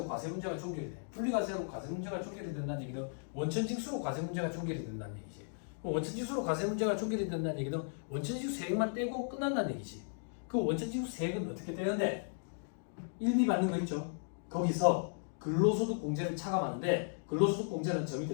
과세 문제가 종결이 돼. 분리과세로 과세 문제가 종결이 된다는 얘기는 원천징수로 과세 문제가 종결이 된다는 얘기지. 원천징수로 과세 문제가 종결이 된다는 얘기는 원천징수 세액만 떼고 끝난다는 얘기지. 그 원천징수 세액은 어떻게 떼는데? 1비 받는 거 있죠? 거기서 근로소득 공제를 차감하는데 근로소득 공제는 저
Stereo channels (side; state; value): right; silent; digital silence